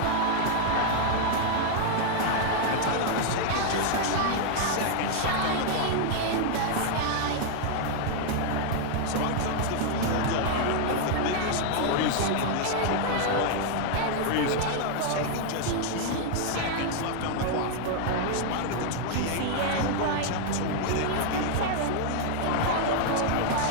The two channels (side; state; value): both; different; correlation 0.00